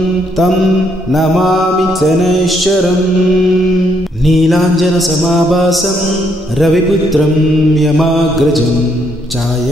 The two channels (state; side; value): normal; both; correlation 0.73